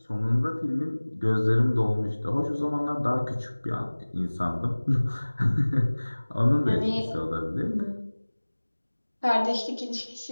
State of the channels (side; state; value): both; inverted; correlation -1.00